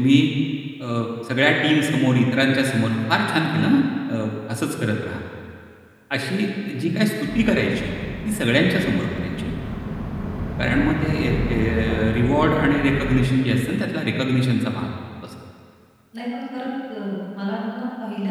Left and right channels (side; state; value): both; identical; correlation 1.00